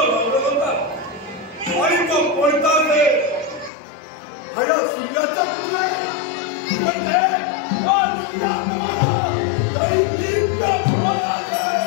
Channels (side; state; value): right; drops out; at 3.7 s